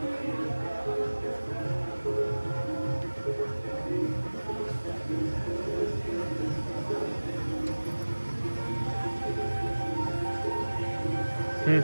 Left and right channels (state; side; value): inverted; both; correlation -1.00